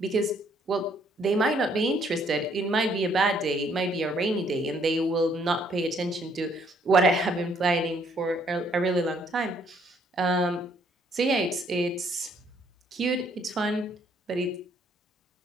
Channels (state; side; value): normal; both; correlation 0.66